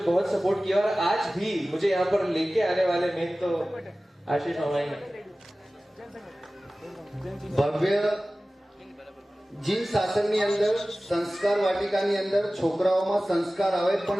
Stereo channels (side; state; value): both; normal; correlation 0.97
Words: सपोर्ट किया, और आज भी मुझे यहाँ पर लेके आने वाले में तो आशीष मामा ही हैं। ભવ્ય જી શાસનની અંદર સંસ્કાર વાટિકાની અંદર છોકરાઓમાં સંસ્કાર આવે,